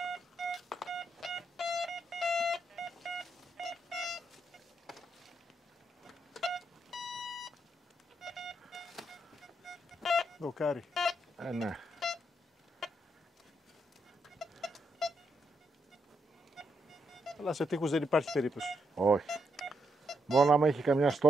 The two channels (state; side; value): normal; both; correlation 0.79